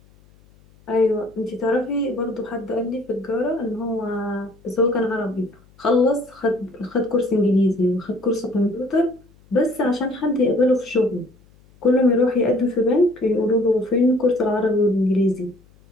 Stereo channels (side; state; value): left; noise; hum, 29 dB below the sound